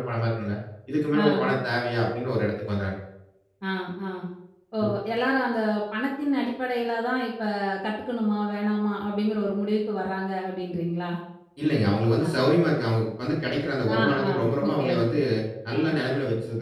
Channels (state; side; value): identical; both; correlation 1.00